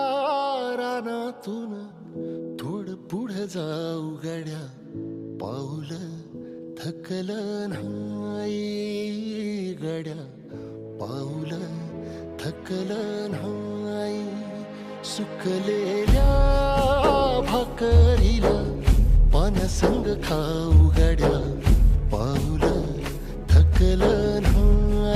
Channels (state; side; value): identical; both; correlation 1.00